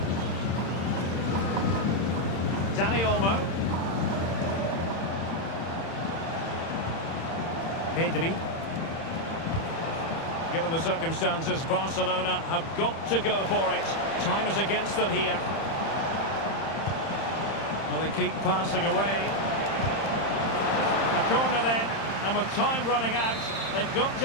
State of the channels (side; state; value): right; late; 31 ms